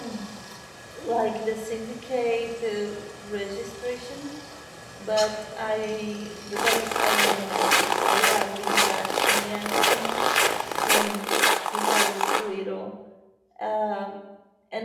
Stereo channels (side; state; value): both; identical; correlation 1.00